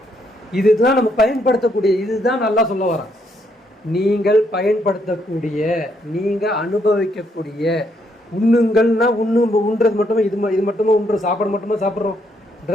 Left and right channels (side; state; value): both; normal; correlation 0.74